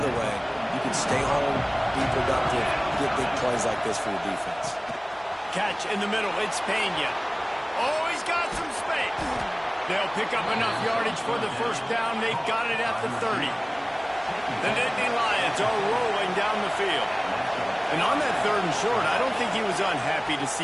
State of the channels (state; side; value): identical; both; correlation 1.00